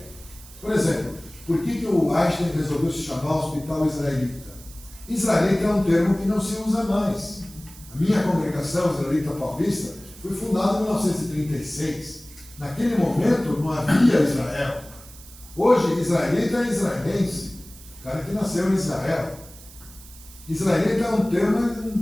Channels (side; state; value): right; noise; hiss, 20 dB below the sound